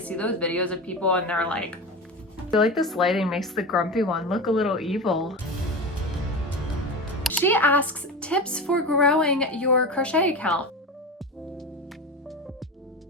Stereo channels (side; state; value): both; normal; correlation 0.25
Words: those videos of people and they're like, I feel like this lighting makes the grumpy one look a little evil. She asks tips for growing your crochet account.